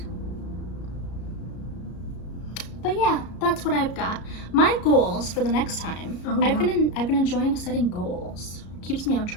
But yeah, that's what I've got. My goals for the next time. I've been enjoying setting goals. Keeps me on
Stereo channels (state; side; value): late; right; 33 ms